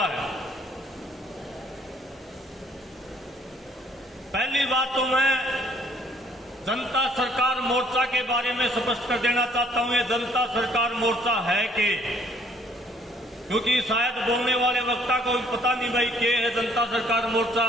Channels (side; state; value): both; normal; correlation 0.62